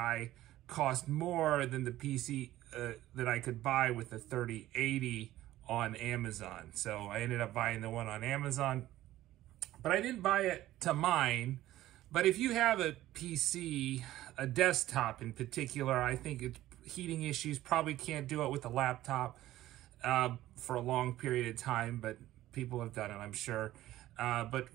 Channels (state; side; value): quieter; left; 14.8 dB